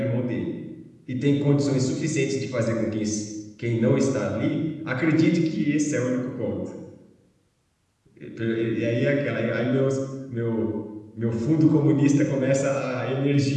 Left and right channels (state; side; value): identical; both; correlation 1.00